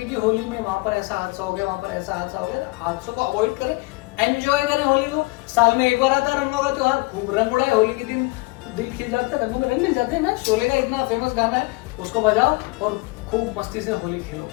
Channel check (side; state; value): right; quieter; 24.6 dB